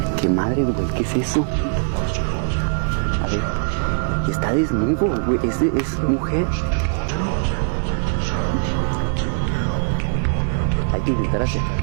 qué madre, güey, ¿qué es eso? A ver, está desnudo, güey, es mujer. Hay que intentar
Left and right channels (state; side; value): silent; left; digital silence